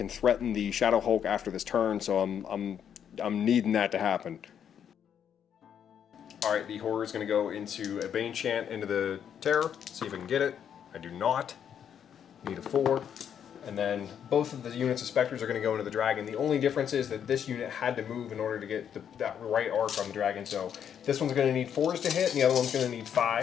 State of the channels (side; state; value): right; quieter; 8.6 dB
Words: threaten the Shadow Hulk after this turn, so I'm needing that to happen. Alright, the Horror is going to go into a Bane Chant into the Terror. See if I can get it. I do not. Need a 4. And then both of the units of Spectres are going to go into the Dragon. The only difference is that this unit had to move in order to get that right arc on the Dragon. So this one's going to need 4s to hit, and the other one's going to need